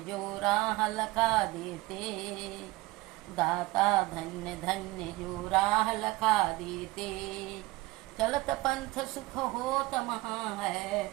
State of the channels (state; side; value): quieter; left; 20.3 dB